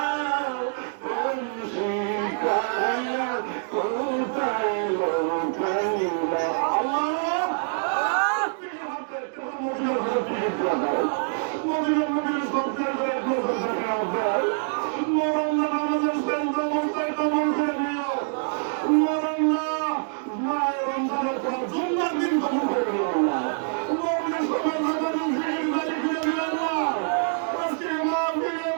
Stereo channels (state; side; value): silent; left; digital silence